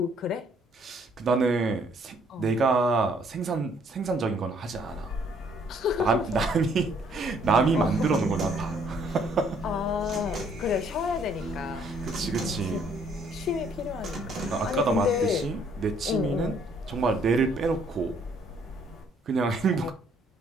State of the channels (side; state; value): both; normal; correlation 0.65